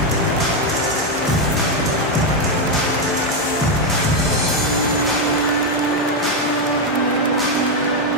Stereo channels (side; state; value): both; normal; correlation 0.04